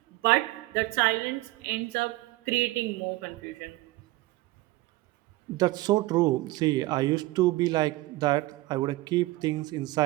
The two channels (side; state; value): left; quieter; 19.2 dB